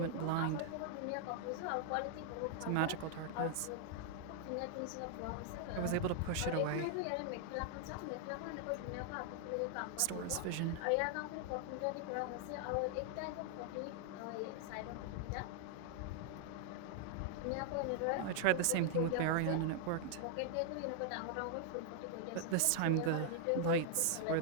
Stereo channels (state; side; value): different; both; correlation -0.01